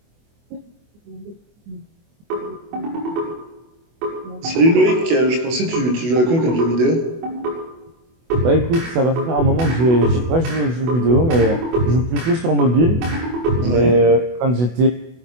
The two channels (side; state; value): left; late; 24 ms